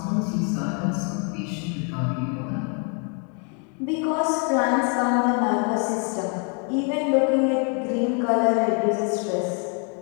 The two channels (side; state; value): right; quieter; 38.1 dB